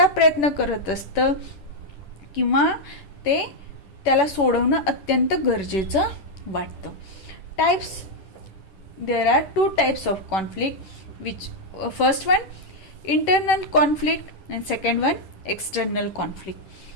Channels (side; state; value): right; late; 10 ms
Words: प्रयत्न करत असतं किंवा त्याला सोडवणं अत्यंत गरजेचं वाटतं. Types, there are 2 types of conflict which first one internal conflict and second one external conflict.